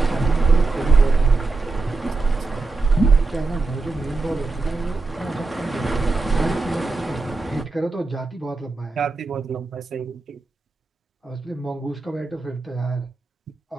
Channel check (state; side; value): quieter; left; 3.7 dB